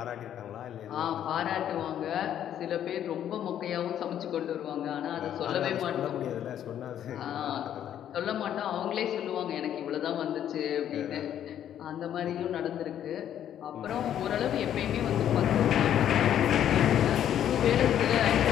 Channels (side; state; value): right; quieter; 10.4 dB